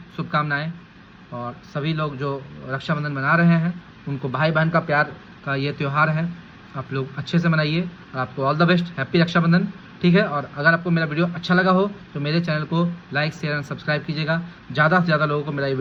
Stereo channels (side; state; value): both; identical; correlation 1.00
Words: शुभकामनाएं, और सभी लोग जो रक्षाबंधन मना रहे हैं उनको भाई बहन का प्यार का ये त्यौहार है, आप लोग अच्छे से मनाइए, और आपको all the best, happy Rakshabandhan, ठीक है। और अगर आपको मेरा वीडियो अच्छा लगा हो तो मेरे चैनल को लाइक, शेयर एंड सब्सक्राइब कीजिएगा, ज़्यादा से ज़्यादा लोगों को मेरा ये